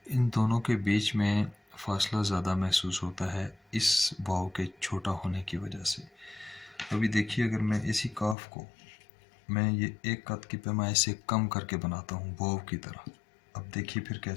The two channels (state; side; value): drops out; right; at 8.3 s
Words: इन दोनों के बीच में फ़ासला ज़्यादा महसूस होता है इस वाव के छोटा होने की वजह से। अभी देखिए, अगर मैं इसी काफ को मैं ये एक कत की पैमाइश से कम करके बनाता हूँ वाव की तरह, अब देखिए फिर